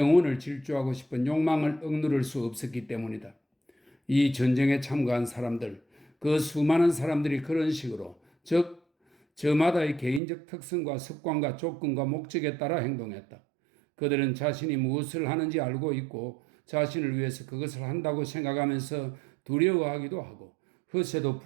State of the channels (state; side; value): drops out; left; at 10.2 s